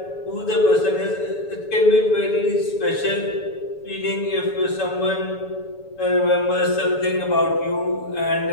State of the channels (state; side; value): late; right; 7.0 ms